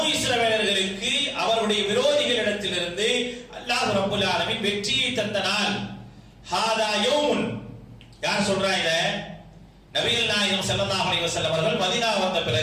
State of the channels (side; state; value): both; identical; correlation 1.00